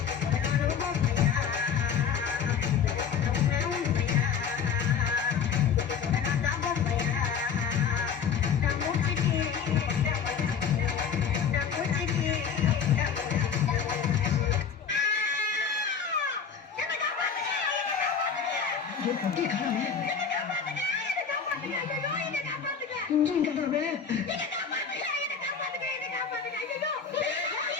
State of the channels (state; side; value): quieter; right; 6.7 dB